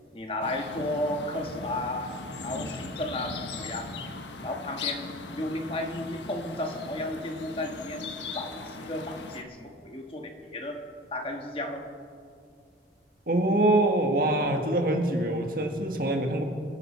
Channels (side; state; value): both; normal; correlation 0.39